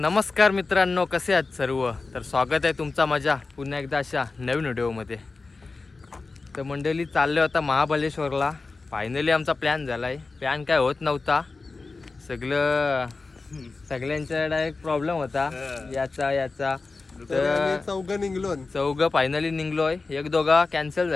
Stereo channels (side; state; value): right; quieter; 3.9 dB